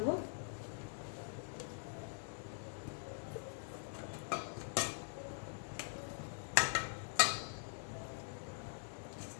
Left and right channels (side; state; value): right; silent; digital silence